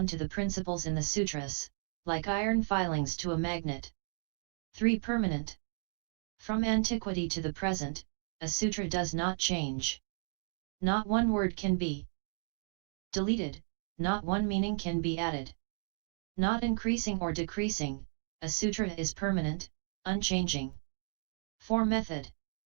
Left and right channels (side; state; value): left; silent; 55 dB below the other